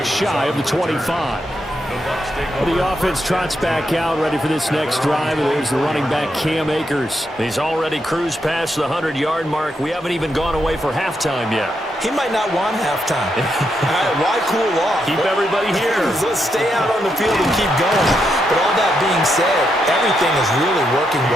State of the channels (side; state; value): both; normal; correlation 0.81